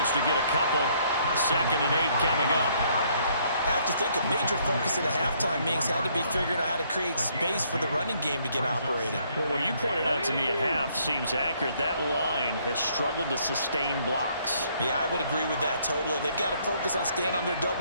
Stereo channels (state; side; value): inverted; both; correlation -0.67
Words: to get a couple. 2nd and 8 coming up. I have to think a major focus at a halftime means had to be figuring out how to create space for the running game to get operating. Well, what you pointed out to me at half seems accurate. That line has struggled to sustain blocks. Yeah, I would agree with that totally. They've got to focus on staying on their